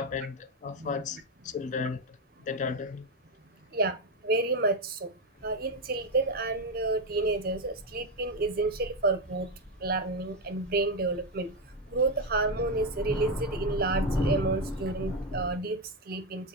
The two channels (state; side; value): normal; both; correlation 0.08